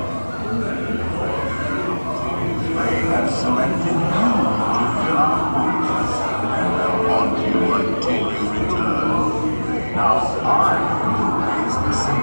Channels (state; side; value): inverted; both; correlation -1.00